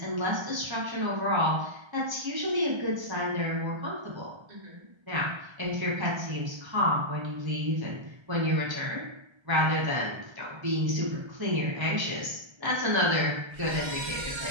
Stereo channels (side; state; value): left; late; 1.3 ms